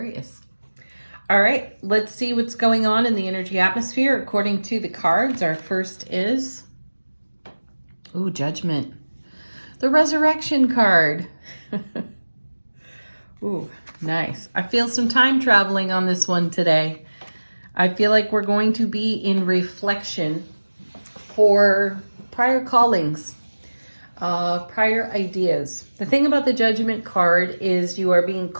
All right, let's see what's going on in the energy atmosphere according to the cards. Our first is, Judgment. The Resurrection card. Ooh, nice. I feel some time traveling on this one today. I feel like we're going to be in reflection for prior callings, prior ideas. The thing about the Judgment card is you are being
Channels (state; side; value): inverted; both; correlation -1.00